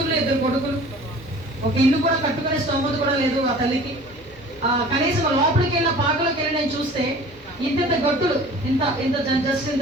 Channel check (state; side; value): normal; both; correlation 0.45